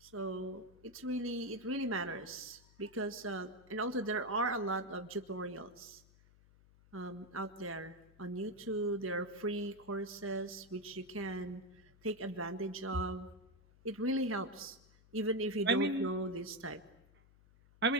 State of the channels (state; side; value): noise; left; hum, 26 dB below the sound